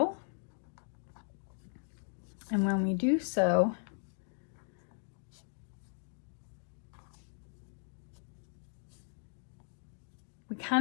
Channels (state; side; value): silent; right; digital silence